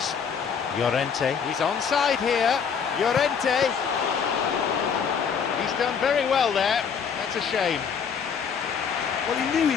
Llorente. He's onside here. Llorente. He's done very well there. That's a shame. Well, he knew he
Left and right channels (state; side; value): quieter; right; 6.7 dB